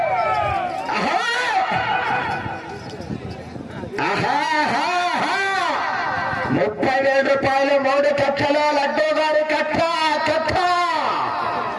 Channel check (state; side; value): identical; both; correlation 1.00